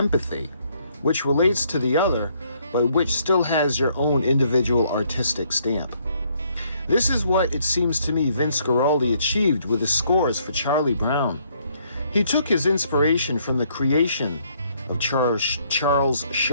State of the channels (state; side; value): inverted; both; correlation -0.68